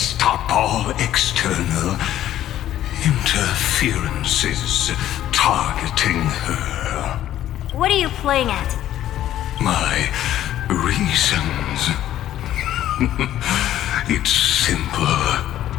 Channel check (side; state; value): right; quieter; 12.5 dB